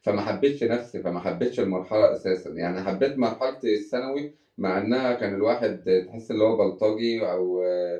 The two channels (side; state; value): both; identical; correlation 1.00